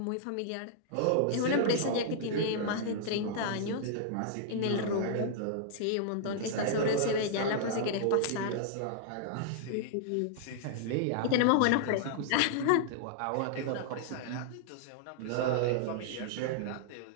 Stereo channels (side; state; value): both; different; correlation -0.01